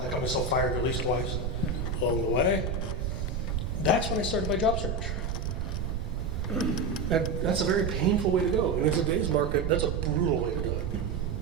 got myself fired at least twice along the way, that's when I started my job search. That's a very painful way to go. And in today's market, that's a brutal way to do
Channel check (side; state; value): right; noise; rumble, 2 dB below the sound